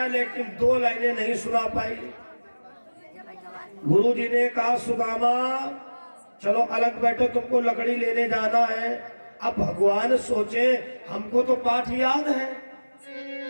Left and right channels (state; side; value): inverted; both; correlation -1.00